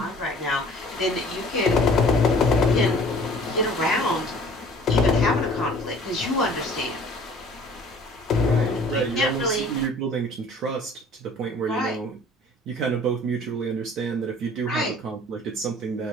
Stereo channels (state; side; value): normal; both; correlation 0.51